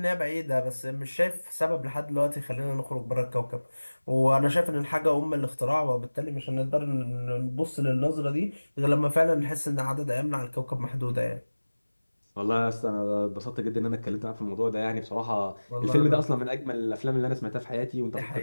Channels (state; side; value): inverted; both; correlation -1.00